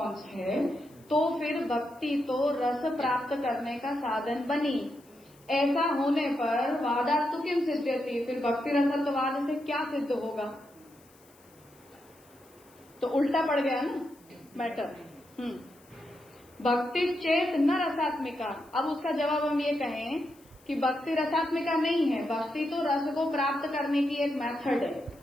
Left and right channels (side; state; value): left; noise; hiss, 29 dB below the sound